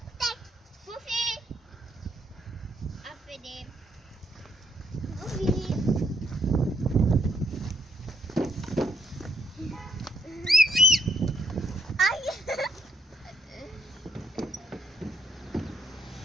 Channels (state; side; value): normal; both; correlation 0.72